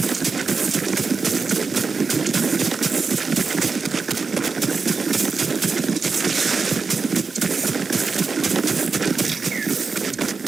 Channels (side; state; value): left; quieter; 4.7 dB